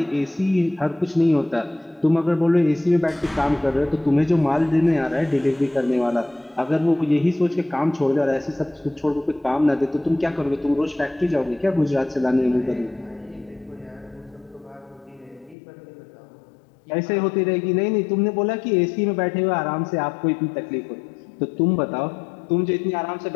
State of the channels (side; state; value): right; drops out; at 15.6 s